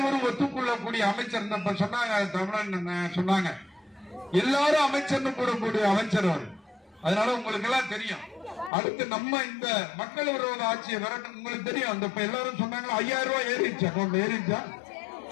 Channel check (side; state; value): right; drops out; at 8.7 s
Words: ஒத்துக்கொள்ளக்கூடிய அமைச்சர். சொன்னாங்க தமிழன் சொன்னாங்க, எல்லாரும் அமைச்சர்னு கூறக்கூடிய அமைச்சர் அவர். அதனால உங்களுக்கு எல்லாம் தெரியும். அடுத்து நம்ம இந்த மக்கள் விரோத ஆட்சியை விரட்ட உங்களுக்கு தெரியும். அந்த எல்லாரும் சொன்னாங்க 5000 ரூபாய் ஏறிடுச்சு, அக்கௌண்ட் ஏறிடுச்சா?